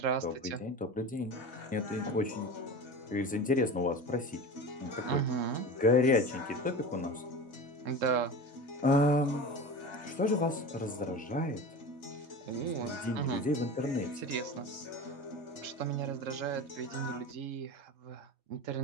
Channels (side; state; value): both; normal; correlation 0.31